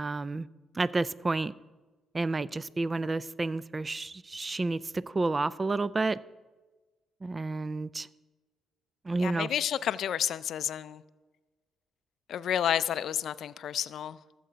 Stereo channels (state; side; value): normal; both; correlation 0.82